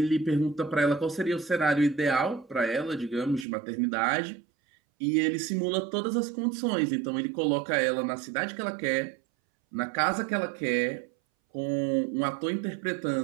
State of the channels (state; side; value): drops out; left; at 3.5 s